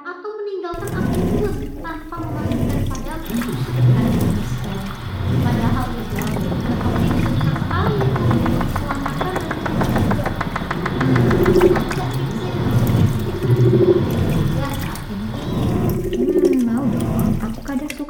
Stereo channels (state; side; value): identical; both; correlation 1.00